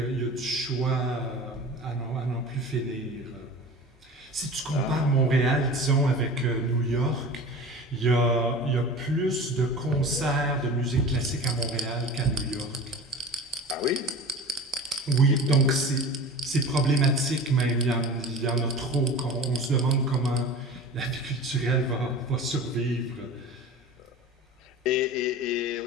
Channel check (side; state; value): both; normal; correlation 0.36